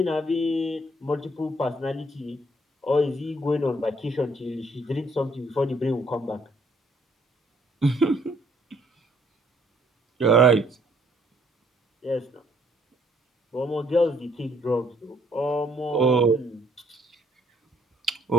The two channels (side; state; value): both; normal; correlation 0.65